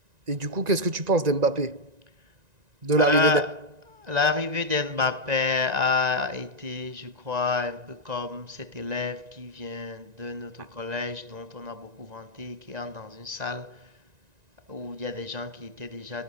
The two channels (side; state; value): left; late; 1.9 ms